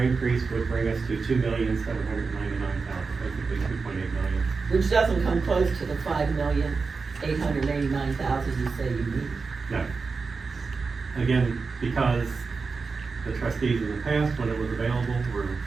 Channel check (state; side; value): quieter; left; 4.6 dB